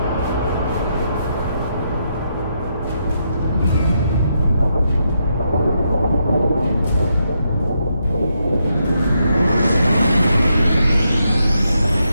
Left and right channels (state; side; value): inverted; both; correlation -0.80